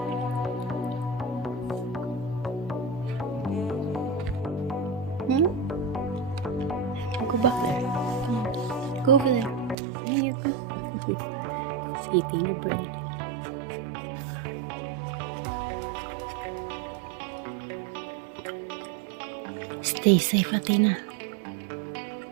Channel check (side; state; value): left; drops out; at 9.8 s